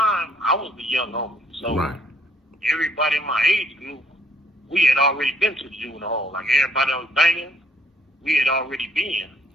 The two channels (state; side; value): normal; both; correlation 0.66